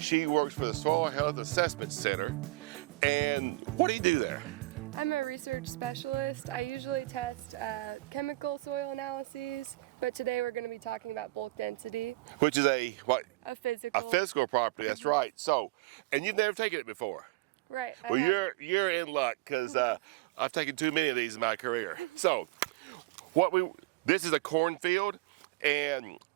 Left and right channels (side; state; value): left; quieter; 21.6 dB